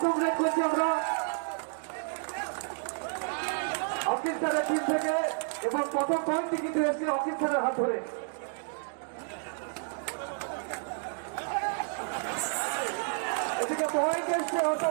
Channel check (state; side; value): silent; left; 57 dB below the other